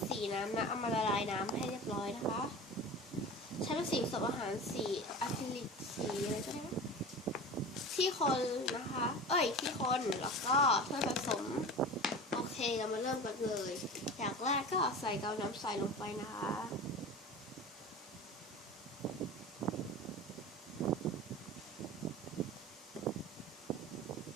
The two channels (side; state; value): both; normal; correlation 0.33